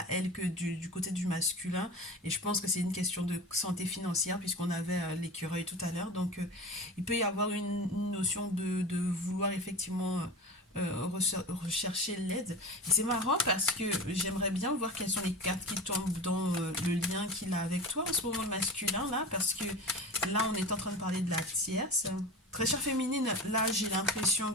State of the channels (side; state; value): both; normal; correlation 0.31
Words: elle que du côté du masculin. Et je pense que c'est une question de santé financière puisqu'on avait l'écureuil tout à l'heure. Donc il peut y avoir une notion de vouloir effectivement rechercher l'aide. Et c'est marrant parce que j'aimerais bien voir quelles sont les cartes qui tombent dans le lien qu'il a avec toi en ce moment, le masculin, là. Parce que là, on est en train de parler de la tierce. Très chère féminine, là, j'ai l'impression